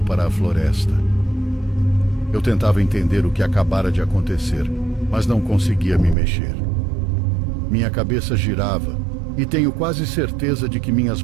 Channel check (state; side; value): drops out; left; at 6.2 s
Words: para a floresta. Eu tentava entender o que acabara de acontecer, mas não conseguia me mexer. Minha cabeça girava e tenho quase certeza de que minhas